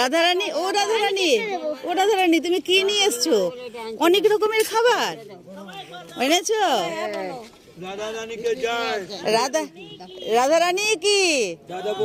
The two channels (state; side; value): identical; both; correlation 1.00